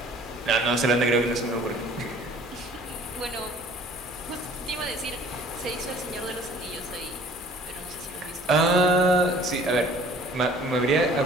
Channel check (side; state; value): both; normal; correlation 0.51